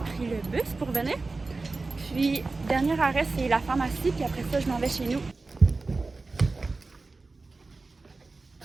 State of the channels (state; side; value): quieter; left; 3.7 dB